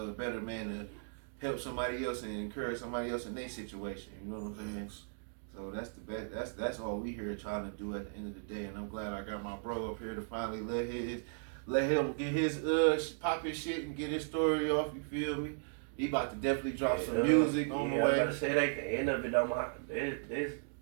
better man to help somebody else and encourage somebody else in their situation. You know what I'm saying? So that's the best. That's all we here trying to do at the end of the day. And I'm glad I got my bro up here to finally let him get his pop his shit and get his story off. You feel me? He about to definitely drop some music on the way. I'm about to say that at the end of it, though,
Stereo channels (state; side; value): silent; left; digital silence